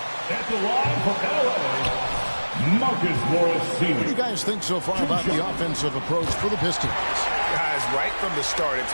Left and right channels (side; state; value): both; inverted; correlation -1.00